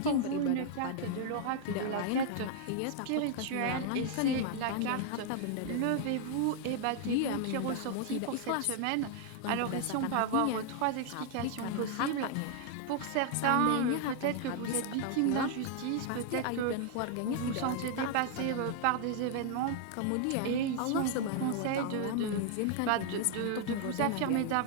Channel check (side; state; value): both; different; correlation 0.00